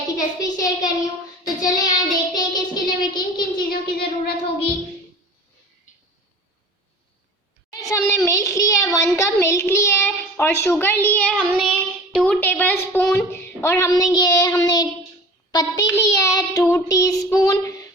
की रेसिपी शेयर कर रही हूँ। तो चलें यहाँ देखते हैं कि इसके लिए हमें किन किन चीज़ों की ज़रूरत होगी। हमने मिल्क लिया है, 1 कप मिल्क लिया है और शुगर ली है हमने 2 टेबलस्पून और हमने पत्ती लिया है 2 टीस्पून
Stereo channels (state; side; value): normal; both; correlation 0.41